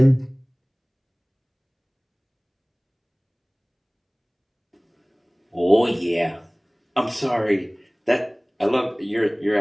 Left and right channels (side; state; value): both; identical; correlation 1.00